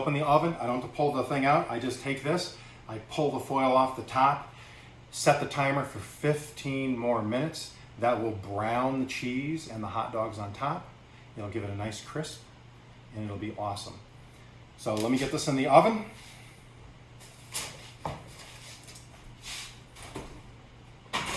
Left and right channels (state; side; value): identical; both; correlation 1.00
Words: the oven. I don't have to pull the thing out. I just take this, I pull the foil off the top, set the timer for 15 more minutes. That will brown the cheese and the hot dogs on top. It'll give it a nice crisp and it'll be awesome. So let me get this in the oven.